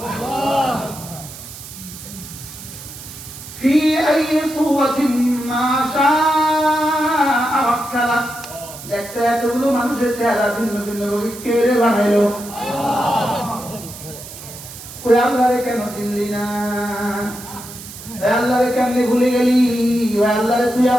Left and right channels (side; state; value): right; noise; hiss, 14 dB below the sound